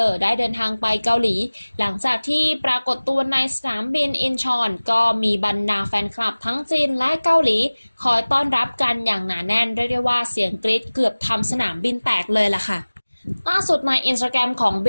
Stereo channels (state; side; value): inverted; both; correlation -1.00